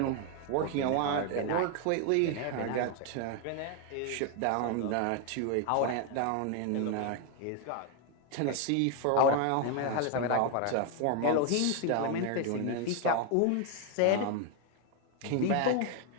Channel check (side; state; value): both; different; correlation 0.01